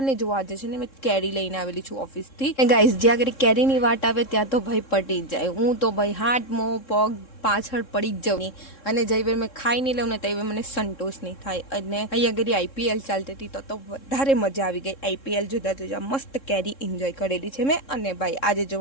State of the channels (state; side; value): late; right; 3.7 ms